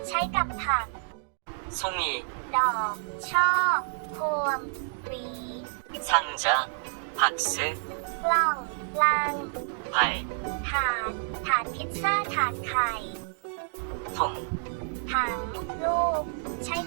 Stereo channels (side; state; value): left; silent; digital silence